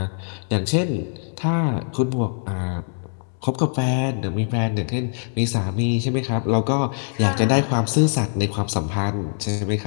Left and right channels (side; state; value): right; silent; 64 dB below the other